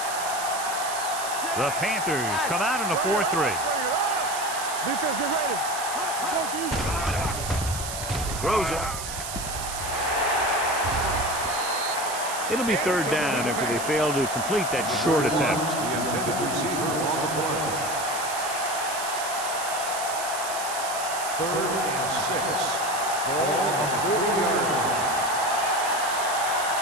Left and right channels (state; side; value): noise; right; hiss, 7 dB below the sound